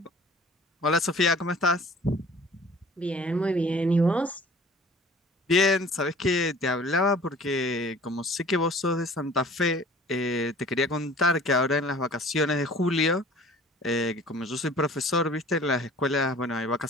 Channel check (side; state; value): both; normal; correlation 0.48